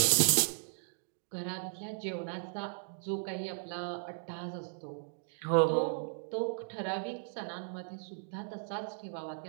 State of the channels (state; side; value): silent; left; digital silence